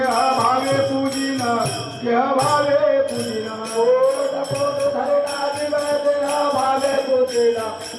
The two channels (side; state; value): both; identical; correlation 1.00